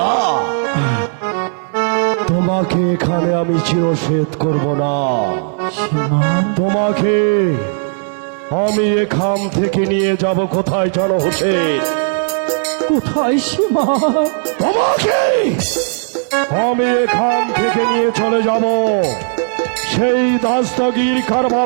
তোমাকে এখানে আমি চিরসেদ করব না। সীমা তোমাকে আমি এখান থেকে নিয়ে যাব কোথায় জানো হোসেন? কোথায় সীমা? তোমাকে আমি এখান থেকে নিয়ে চলে যাব সেই দাস্তগীর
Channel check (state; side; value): silent; left; 63 dB below the other